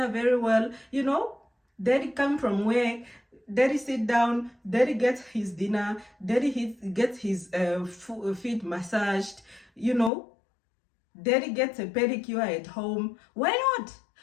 very well, you know, daddy come from work, daddy sit down, daddy gets his dinner, daddy gets his feet massaged, you know, daddy gets a pedicure at home. Why not?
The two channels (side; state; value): right; drops out; at 10.1 s